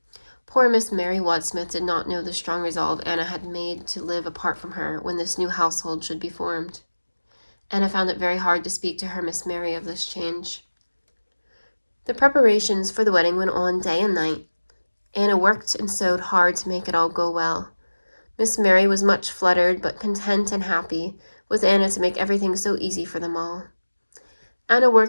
Poor Miss Mary Wadsmith did not know the strong resolve Anna had made to live apart from her when this new household should be formed. Anna found it very hard to speak to her Miss Mary of this change. The preparations for the wedding went on day and night. Anna worked and sewed hard to make it all go well. Miss Mary was much fluttered, but content and happy, with Anna to make everything so easy for them all. Anna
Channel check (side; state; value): both; inverted; correlation -1.00